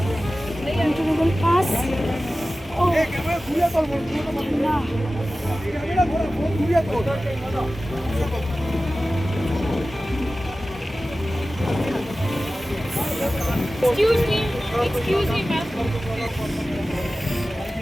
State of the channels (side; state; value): both; normal; correlation 0.96